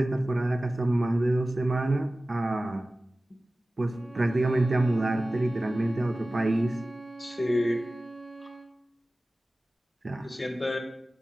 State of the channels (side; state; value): both; normal; correlation 0.96